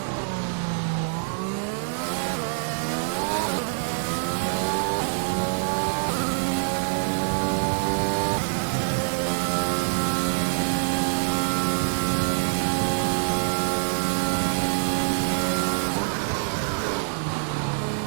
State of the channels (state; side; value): silent; left; digital silence